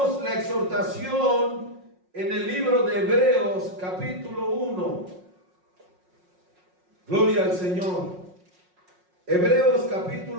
la exhortación en el libro de Hebreos capítulo 1. Gloria al Señor. Hebreos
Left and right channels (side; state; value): left; late; 5.5 ms